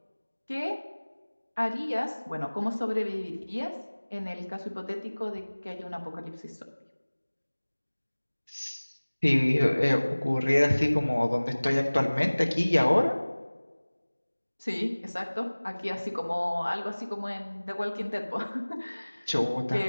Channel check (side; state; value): both; inverted; correlation -1.00